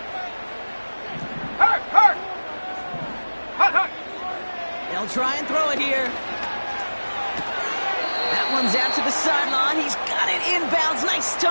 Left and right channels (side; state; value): both; inverted; correlation -1.00